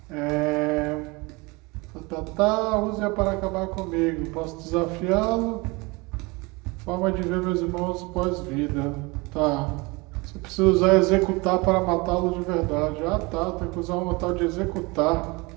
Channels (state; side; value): quieter; left; 25.7 dB